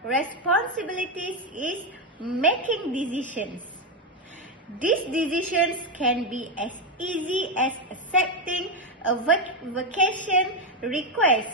responsibilities is making decisions. These decisions can be as easy as accepting a vacation request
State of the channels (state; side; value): normal; both; correlation 0.07